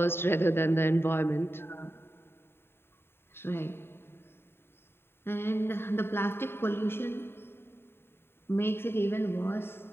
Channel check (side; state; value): right; late; 0.11 ms